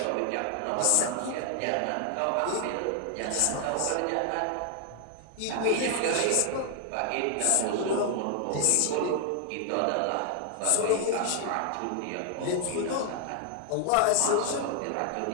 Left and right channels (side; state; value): both; different; correlation 0.00